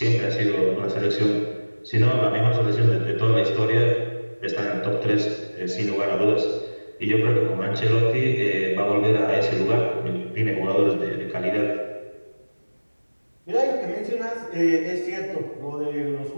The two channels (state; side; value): inverted; both; correlation -1.00